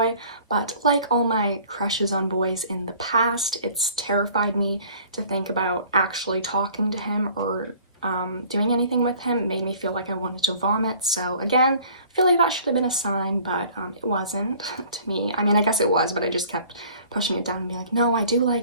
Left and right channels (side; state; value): both; inverted; correlation -0.51